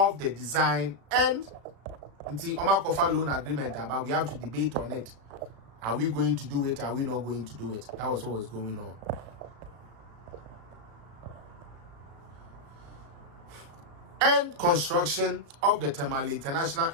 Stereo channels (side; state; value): left; late; 36 ms